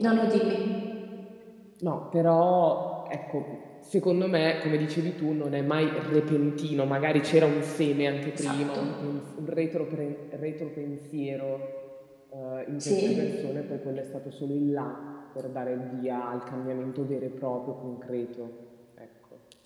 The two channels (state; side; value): identical; both; correlation 1.00